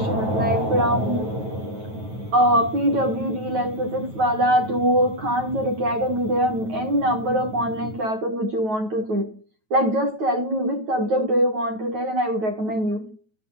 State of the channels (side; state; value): left; late; 9.2 ms